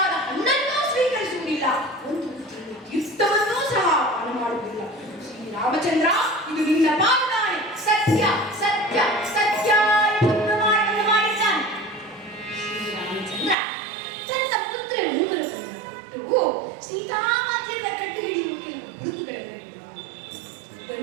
ಹಣ್ಣನ್ನೂ ಸ್ವೀಕರಿಸುವುದಿಲ್ಲ, ಒಂದು ತೀರ್ಥವನ್ನೂ ಸಹ ಪಾನ ಮಾಡುವುದಿಲ್ಲ. ಶ್ರೀರಾಮಚಂದ್ರ, ಇದು ನಿನ್ನ ಪಾದಾನೆ, ಸತ್ಯ ಸತ್ಯ ಸತ್ಯ ಎಂದು ಪ್ರಮಾಣವನ್ನು ಮಾಡಿದ್ದಾನೆ. ಶ್ರೀರಾಮಚಂದ್ರ ತನ್ನ ಪುತ್ರ ಉಂಗುರವನ್ನು ಕೊಟ್ಟು ಸೀತಾಮಾತೆಯನ್ನ ಕಂಡು ಹಿಡಿಯುವ ಕೆಲವು ಗುರುತುಗಳನ್ನು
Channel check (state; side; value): drops out; left; at 13.6 s